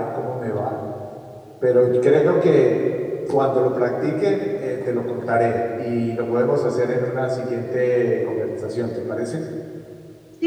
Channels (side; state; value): both; identical; correlation 1.00